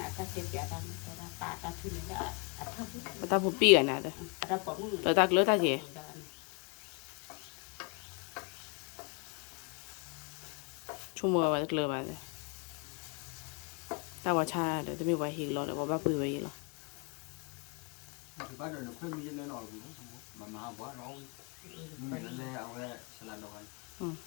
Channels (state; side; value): quieter; right; 33.1 dB